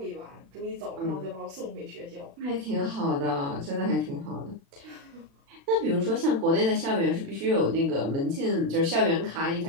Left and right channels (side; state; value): left; late; 36 ms